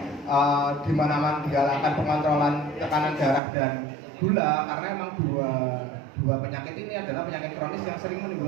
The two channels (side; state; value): left; drops out; at 3.4 s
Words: di mana-mana digalakkan pengontrolan tekanan darah dan gula? Karena emang dua penyakit ini adalah penyakit kronis yang sering